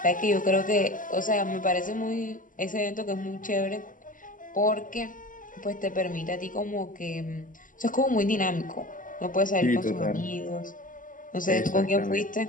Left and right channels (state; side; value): late; right; 0.38 ms